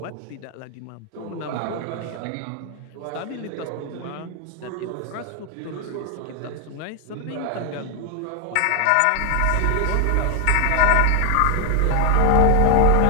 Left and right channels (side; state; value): both; different; correlation 0.00